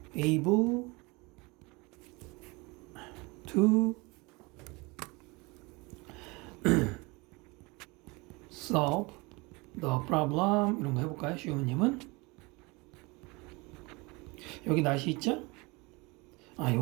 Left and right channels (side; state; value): left; quieter; 26.0 dB